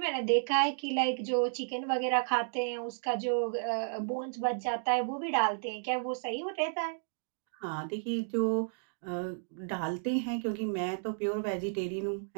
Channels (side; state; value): left; silent; digital silence